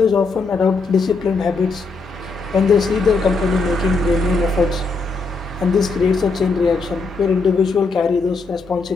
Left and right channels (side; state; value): right; quieter; 4.0 dB